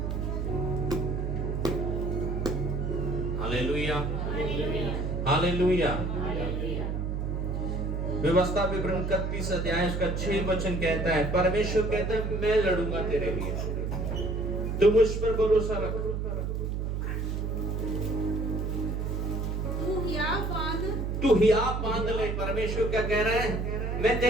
हालेलुया। हालेलुया। व्यवस्था विवरण 31 अध्याय उसका 6 वचन कहता है, परमेश्वर कहता है मैं लड़ूंगा तेरे लिए, तू मुझ पर भरोसा रख। तू हियाव बांध ले। परमेश्वर क्या कह रहा है? मैं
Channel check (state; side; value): noise; right; hum, 1 dB below the sound